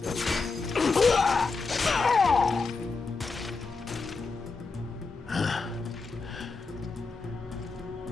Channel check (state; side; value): quieter; right; 4.2 dB